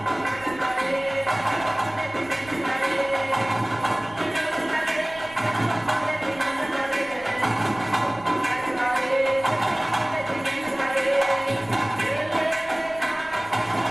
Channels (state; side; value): noise; right; rumble, 22 dB below the sound